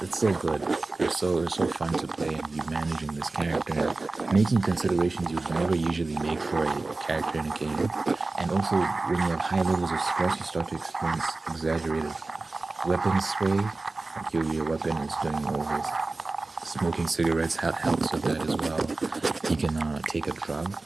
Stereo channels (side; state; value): left; quieter; 3.4 dB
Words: so good. It's so fun to play and be managing this character and making considerations you would never usually make for a character in a game. And also, when you have high levels of stress, you start to experience exaggerated weapon sway. Like your weapon is doing all this. Smoking cigarettes helps with that as well. You can take a drug.